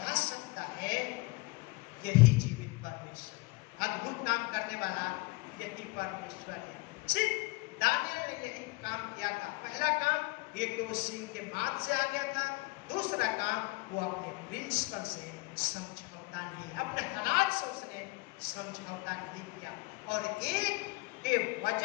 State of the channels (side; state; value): right; quieter; 24.7 dB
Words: सकता है, यही जीवित परमेश्वर, अद्भुत काम करने वाला यही परमेश्वर है। सिर्फ दानियल ने यही काम किया था। पहला काम, एक तो सिंह के माथ से आ गया था। दूसरा काम, वो अपने प्रिंसिपल से समझौता नहीं, अपने हालात से उसने समझौता नहीं किया। और एक के